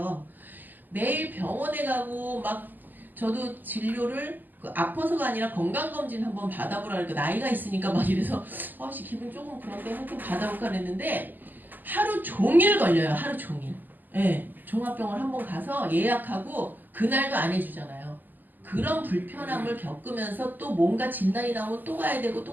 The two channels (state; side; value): late; left; 0.087 ms